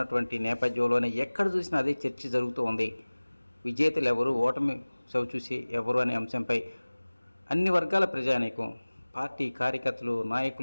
నేపథ్యంలోనే ఎక్కడ చూసినా అదే చర్చ జరుగుతూ ఉంది. విజేతలు ఎవరు, ఓటమి చవిచూసి ఎవరు అనే అంశంపై అన్ని వర్గాల ప్రజానీకం, పార్టీ కార్యకర్తలు,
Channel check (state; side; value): inverted; both; correlation -1.00